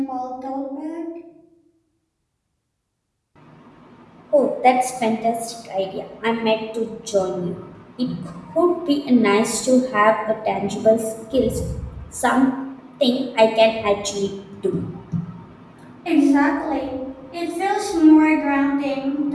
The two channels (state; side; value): identical; both; correlation 1.00